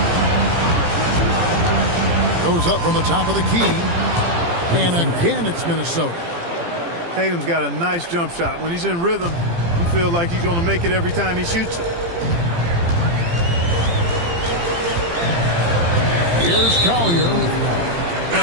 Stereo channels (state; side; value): late; left; 18 ms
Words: Goes up from the top of the key. And again, it's Minnesota. Tatum's got a nice jump shot. When he's in rhythm, you feel like he's going to make it every time he shoots it. Here's Collier.